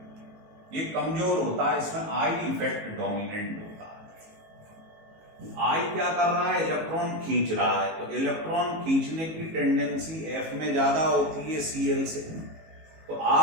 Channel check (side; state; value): left; late; 18 ms